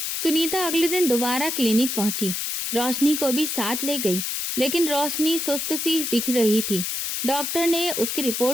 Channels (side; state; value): left; noise; hiss, 2 dB below the sound